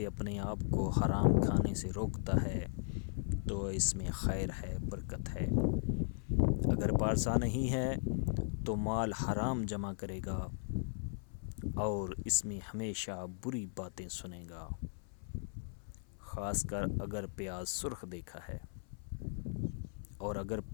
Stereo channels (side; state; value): right; silent; 53 dB below the other